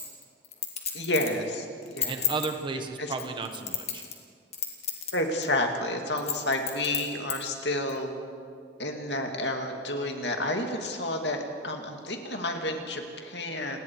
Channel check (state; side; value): normal; both; correlation 0.00